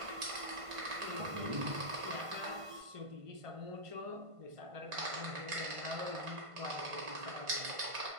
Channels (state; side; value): late; left; 1.5 ms